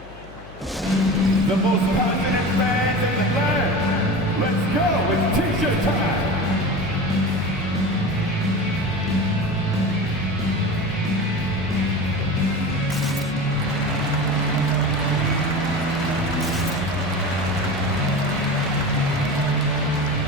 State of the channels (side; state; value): left; noise; hum, 19 dB below the sound